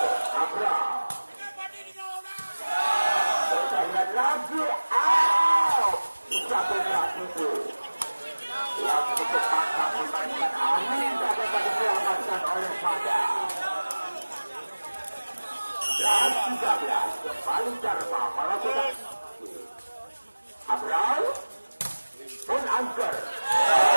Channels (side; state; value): both; inverted; correlation -1.00